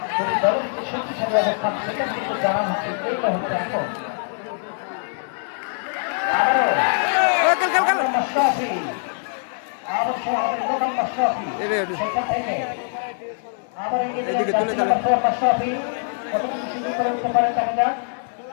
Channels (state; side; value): silent; right; digital silence